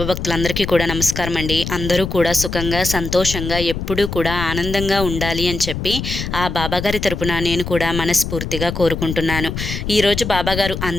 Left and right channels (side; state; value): left; noise; rumble, 5 dB below the sound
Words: భక్తులందరికీ కూడా నమస్కారం అండి. అందరూ కూడా సుఖంగా సంతోషంగా ఎప్పుడూ కూడా ఆనందంగా ఉండాలి అని చెప్పి ఆ బాబాగారి తరపున నేను కూడా మనస్ఫూర్తిగా కోరుకుంటున్నాను. ఈరోజు బాబాగారు